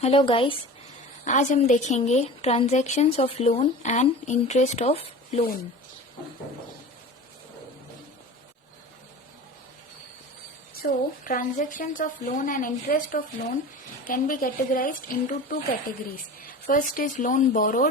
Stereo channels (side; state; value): both; normal; correlation 0.35